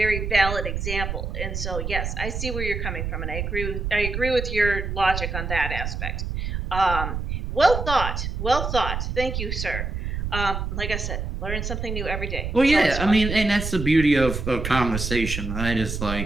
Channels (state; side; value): noise; right; rumble, 4 dB below the sound